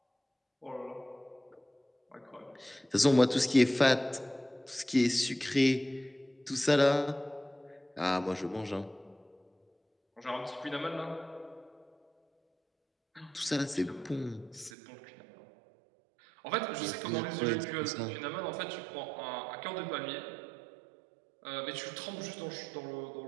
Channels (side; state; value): left; drops out; at 14.7 s